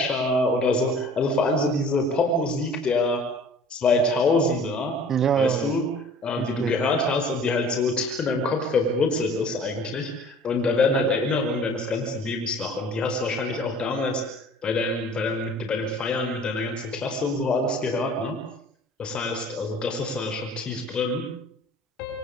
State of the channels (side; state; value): both; normal; correlation 0.48